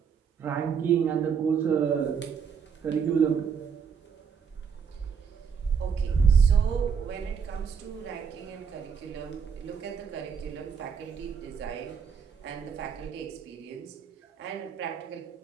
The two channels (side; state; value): left; quieter; 6.6 dB